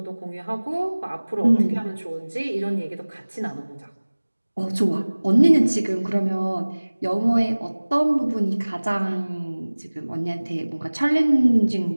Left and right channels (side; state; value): both; inverted; correlation -1.00